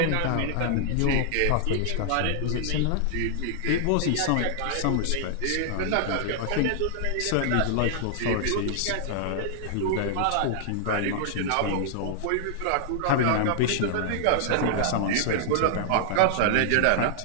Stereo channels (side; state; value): both; different; correlation -0.01